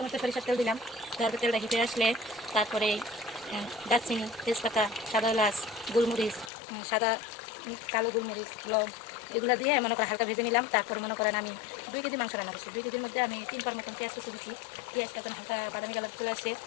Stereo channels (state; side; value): drops out; right; at 6.5 s